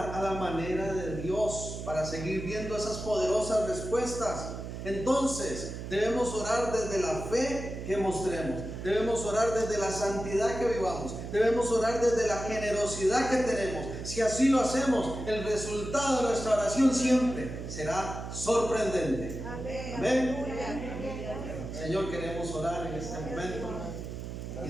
a la manera de Dios para seguir viendo esas poderosas respuestas. Entonces, debemos orar desde la fe que mostremos. Debemos orar desde la santidad que vivamos. Debemos orar desde la generosidad que tenemos. Si así lo hacemos, el resultado de nuestra oración siempre será sorprendente. Amén. Señor, queremos orar en este momento y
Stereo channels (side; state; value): right; noise; hum, 8 dB below the sound